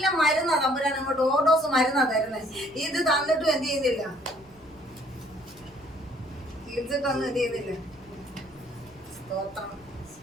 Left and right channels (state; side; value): noise; right; rumble, 26 dB below the sound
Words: മരുന്നാ തമ്പുരാൻ അങ്ങോട്ട് ഓർഡോസ് മരുന്നാ തരുന്നത്. ഇത് തന്നിട്ടും എന്ത് ചെയ്യുന്നില്ല? ചികിത്സിട്ടൊന്നും എന്ത് ചെയ്യുന്നില്ല. സ്തോത്രം.